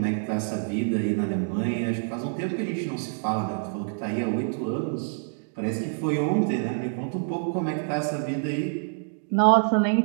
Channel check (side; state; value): left; silent; digital silence